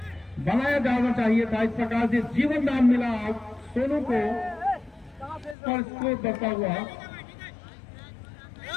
बनाया जाना चाहिए था। इस प्रकार से जीवन दान मिला सोनू को, और स्कोर बढ़ता हुआ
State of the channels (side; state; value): right; drops out; at 5.6 s